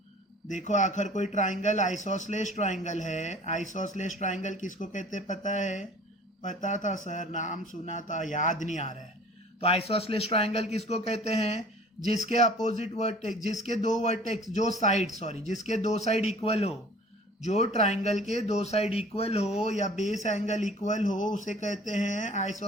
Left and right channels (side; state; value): both; normal; correlation 0.48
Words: देखो आखिर कोई ट्राइंगल आइसोसलेस ट्राइंगल है। आइसोसलेस ट्राइंगल किसको कहते हैं पता है? पता था सर, नाम सुना था, याद नहीं आ रहा है। तो आइसोसलेस ट्राइंगल किसको कहते हैं? जिसके अपोजिट वर्टेक्स, जिसके दो वर्टेक्स, जिसके दो साइड इक्वल हो, जो ट्राइंगल के दो साइड इक्वल हो या बेस एंगल इक्वल हो, उसे कहते हैं